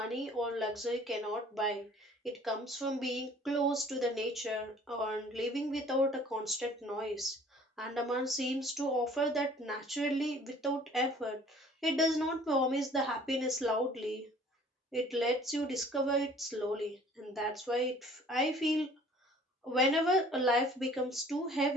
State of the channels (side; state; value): both; normal; correlation 0.53